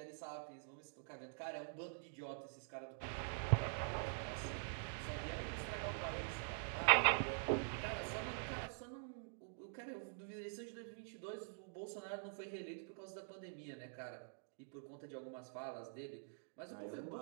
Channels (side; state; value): left; silent; digital silence